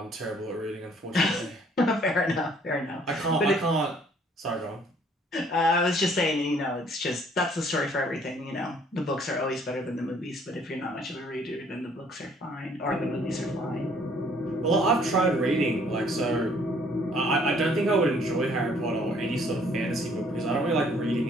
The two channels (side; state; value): both; normal; correlation 0.61